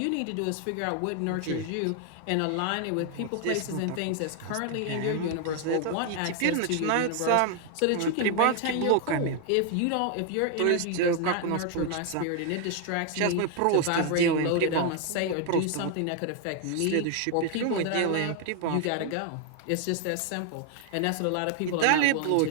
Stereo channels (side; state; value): both; different; correlation 0.00